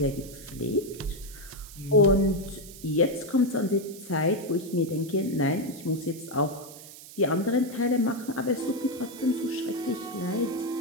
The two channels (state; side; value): noise; right; hiss, 16 dB below the sound